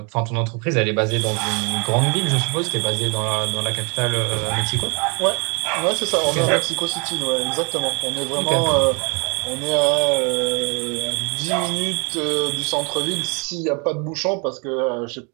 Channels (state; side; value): quieter; left; 33.3 dB